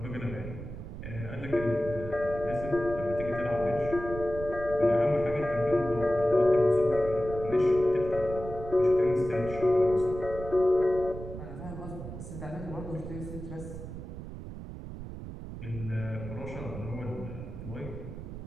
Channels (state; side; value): noise; right; rumble, 10 dB below the sound